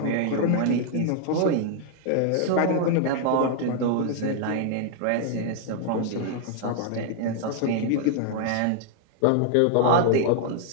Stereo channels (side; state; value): both; different; correlation 0.00